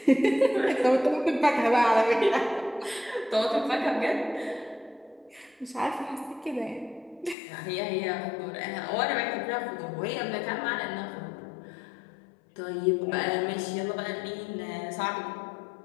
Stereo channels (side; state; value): right; drops out; at 7.4 s